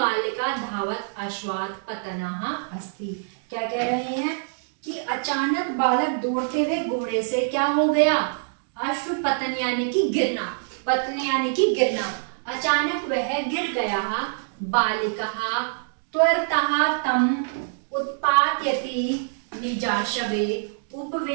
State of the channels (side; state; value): left; silent; digital silence